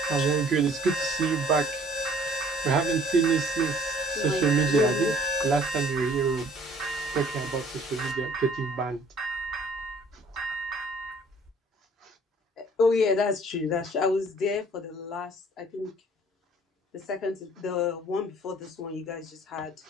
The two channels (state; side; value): normal; both; correlation 0.55